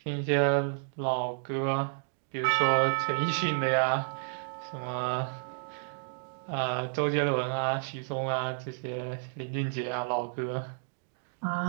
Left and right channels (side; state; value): left; silent; digital silence